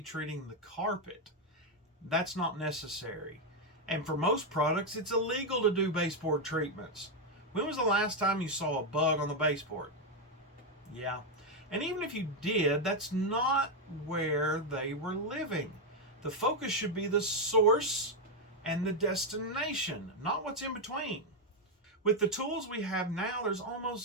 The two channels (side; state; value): both; normal; correlation 0.02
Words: treating the carpet. That's not necessary. And for most products, it's illegal to do baseboard treatments. When was the last time you saw a bug on the baseboard? Yeah. And even if you did, that's not where they were living. The focus should be the source and the destination, not what's in between. With the tools we have now, there's